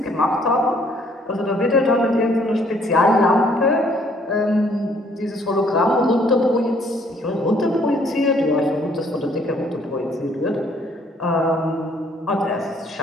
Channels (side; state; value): both; normal; correlation 0.63